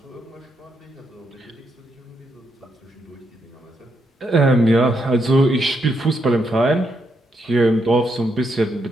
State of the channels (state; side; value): normal; both; correlation 0.79